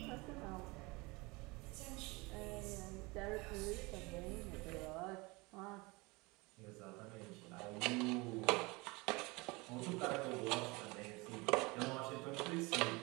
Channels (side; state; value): left; quieter; 25.0 dB